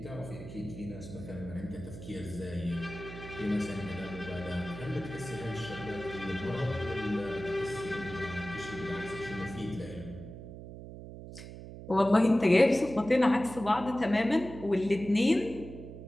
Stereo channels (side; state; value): right; noise; hum, 12 dB below the sound